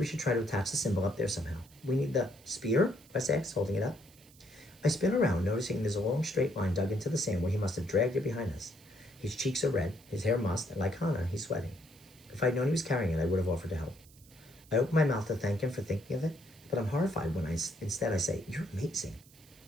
should try to attach the symbol up there somehow. We need the spear, Wes asks, holding it up. I spin around, noticing there's a long straight line dug into the sand where he must have dragged it behind us. His cheeks are red, his hair mussed, and like Hannah, he's sweating. If I'd known he was carrying it, I would have offered to help. I open my mouth to thank him for thinking of it, but I'm horrified when instead I say, you're amazing.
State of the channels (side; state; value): right; noise; hiss, 25 dB below the sound